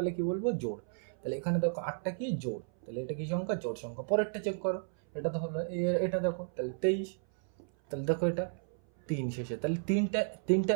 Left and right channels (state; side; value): silent; left; 56 dB below the other